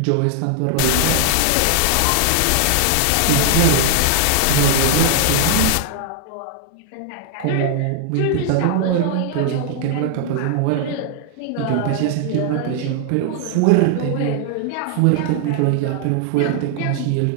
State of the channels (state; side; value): different; both; correlation 0.00